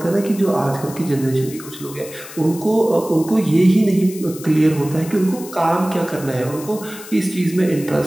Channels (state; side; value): noise; left; hiss, 15 dB below the sound